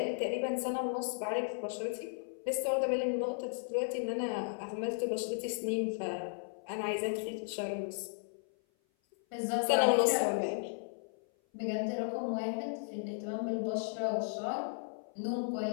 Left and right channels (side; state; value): right; silent; 54 dB below the other